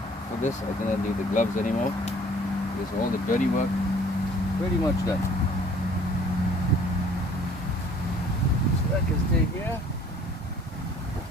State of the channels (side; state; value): both; normal; correlation 0.54